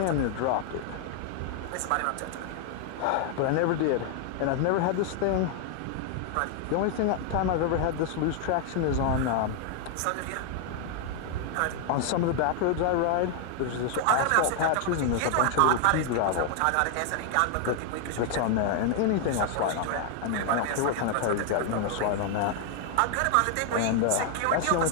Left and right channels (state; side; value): different; both; correlation 0.00